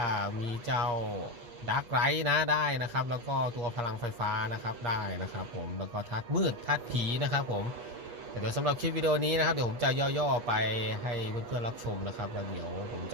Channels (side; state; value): left; late; 8.3 ms